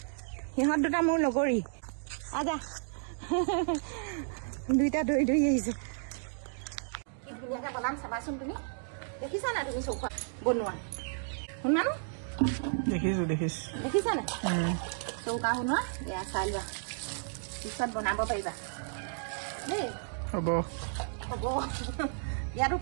সিহঁত দুটা মোৰ লগৰী। আজা দুইটা দৌৰি দৌৰি আহিছে। কি ধুনীয়াকৈ বনাম চাবাচোন। তুমি দেখিছা নাই? তুমি চৌকা বনোৱা শুনা নো? দেখিছা নাই চৌকা শুনোৱা? এয়া চাই লোৱা, পিছত বনাব পাৰিবা দেই। হ'ব ইয়াতো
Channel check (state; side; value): silent; left; digital silence